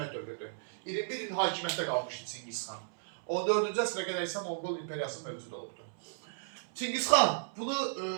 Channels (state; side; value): silent; left; 55 dB below the other